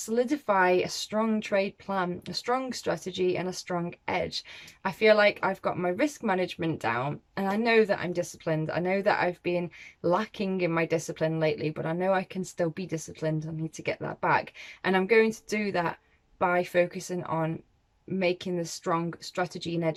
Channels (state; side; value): identical; both; correlation 1.00